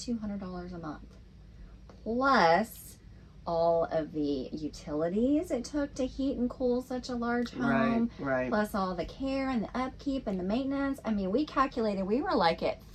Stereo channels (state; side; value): identical; both; correlation 1.00